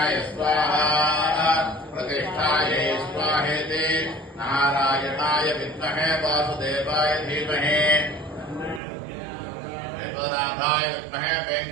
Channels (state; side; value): drops out; left; at 8.8 s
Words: स्वाहा प्रतिष्ठायै स्वाहेति नारायणाय विद्महे वासुदेवाय धीमहि वेदनाथाय विद्महे